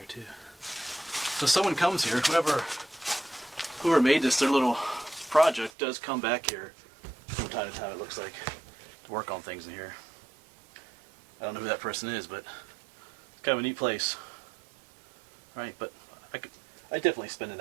too. So someone comes here, whoever made this, their little project, does come back here from time to time, it looks like, to work on things in here. I don't know who that person is, but it's kind of a neat place. Right, but I'd definitely spend the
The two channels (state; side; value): drops out; left; at 5.7 s